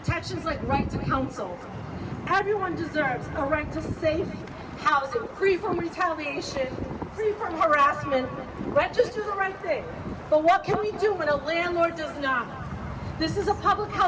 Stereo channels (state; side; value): identical; both; correlation 1.00